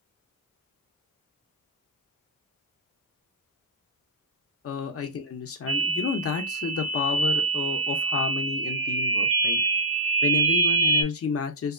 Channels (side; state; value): both; normal; correlation -0.14